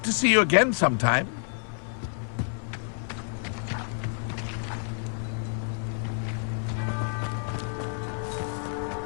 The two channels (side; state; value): right; silent; 59 dB below the other